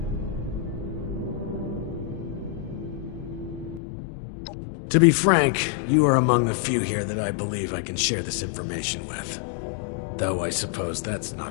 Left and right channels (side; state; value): right; drops out; at 3.8 s